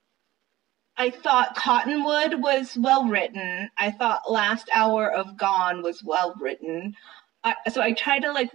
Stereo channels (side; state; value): left; quieter; 16.7 dB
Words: thought Cottonwood was well written. I thought Last Hour of Gone was well written. So I tried to like